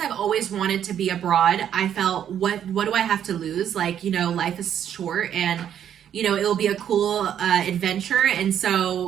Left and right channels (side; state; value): left; quieter; 9.6 dB